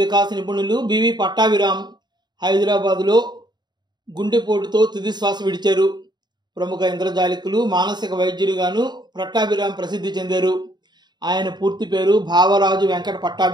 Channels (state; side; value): late; left; 0.21 ms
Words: నిపుణులు బివి పట్టాభిరామ్ హైదరాబాదులో గుండెపోటుతో తుది శ్వాస విడిచారు. ప్రముఖ ఇంద్రజాలికులు, మానసిక వైద్యులుగాను పట్టాభిరామ్ ప్రసిద్ధి చెందారు. ఆయన పూర్తి పేరు భావరాజు వెంకట